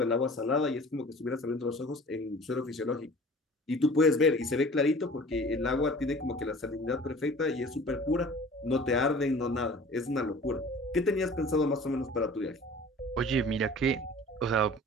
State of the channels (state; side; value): normal; both; correlation 0.44